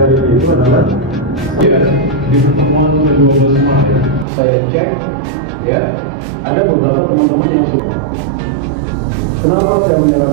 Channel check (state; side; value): drops out; left; at 4.2 s